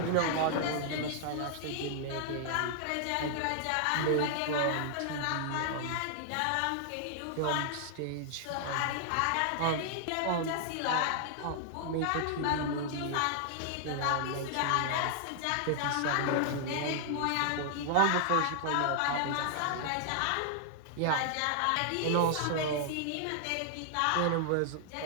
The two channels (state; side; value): different; both; correlation 0.00